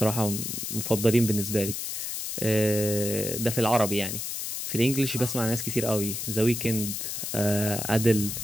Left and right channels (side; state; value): left; noise; hiss, 4 dB below the sound